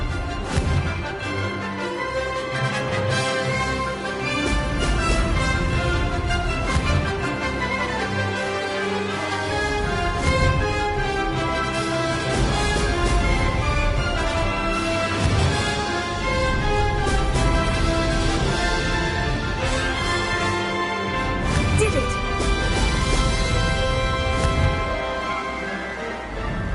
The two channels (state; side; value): identical; both; correlation 1.00